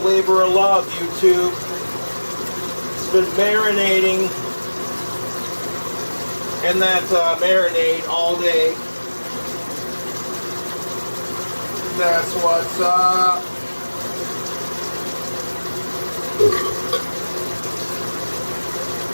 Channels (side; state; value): both; inverted; correlation -1.00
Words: of love, YouTube. It's been marinating in that marinade all day. That's what's up.